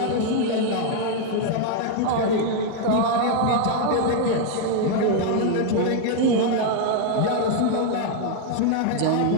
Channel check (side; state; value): both; different; correlation 0.00